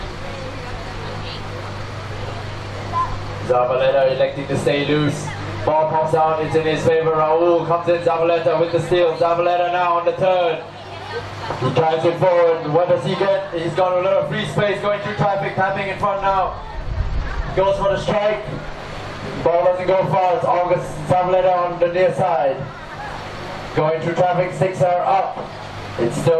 Zabaleta electing to stay loose. Ball pops out, it's in his favor. Raul comes in, Zabaleta with the steal. Zabaleta now on the turn. He drives it forward. What does he get? He's got a little free space going through traffic, tapping in front now. Goes for the strike. Ball doesn't go far. It's August Zabaleta on the near side. Going through traffic, 6 are up. It's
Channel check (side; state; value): both; identical; correlation 1.00